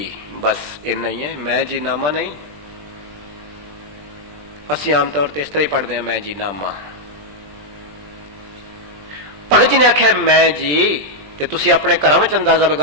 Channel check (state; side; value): late; left; 20 ms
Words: बस इन्ना ही है, मैं जी नामा नहीं। असी आमतौर पर इस तरह ही पढ़ते हैं मैं जी नामा। भगत जी ने आख्या मैं जी, ते तुसी अपने घरों में अंदाजा